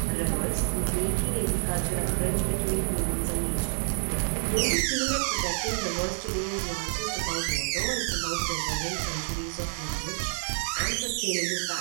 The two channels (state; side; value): silent; left; digital silence